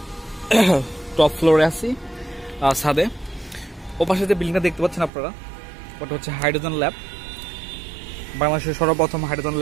টপ ফ্লোরে আছি, ছাদে। ওপাশে যে বিল্ডিংটা দেখতে পাচ্ছেন আপনারা, ওটা হচ্ছে হাইড্রোজেন ল্যাব। বাংলাদেশের সর্বপ্রথম হাইড্রোজেন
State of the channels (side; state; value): left; drops out; at 5.1 s